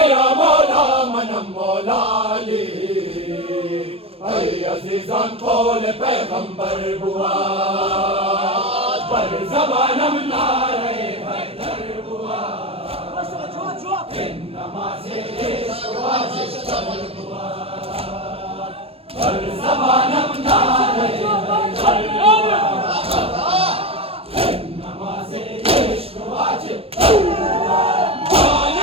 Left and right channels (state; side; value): late; left; 0.28 ms